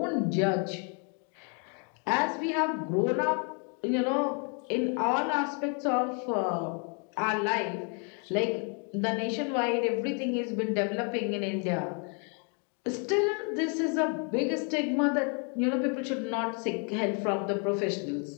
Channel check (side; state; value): right; quieter; 39.1 dB